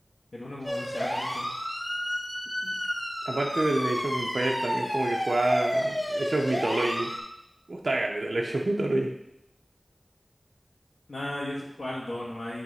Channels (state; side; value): normal; both; correlation 0.97